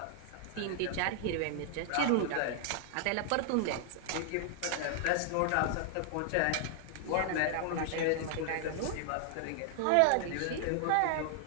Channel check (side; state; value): both; different; correlation 0.00